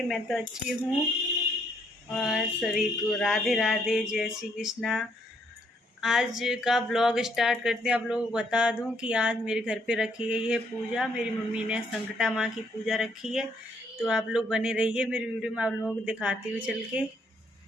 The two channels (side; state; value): both; normal; correlation 0.70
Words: मैं तो अच्छी हूँ। और सभी को राधे राधे, जय श्री कृष्णा। आज का ब्लॉग स्टार्ट करते हैं। आप लोगों को बता दूं कि आज मेरे घर पे रखी गई है पूजा। मेरी मम्मी ने संकटा माँ की पूजा रखी है। तो आप लोग बने रहिए मेरी वीडियो में, आप लोगों को दिखाती हूँ चल के।